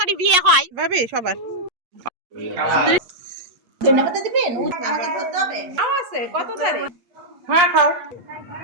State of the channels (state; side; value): late; left; 8.3 ms